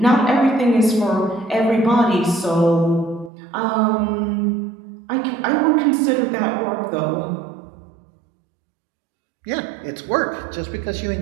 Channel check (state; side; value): drops out; left; at 3.3 s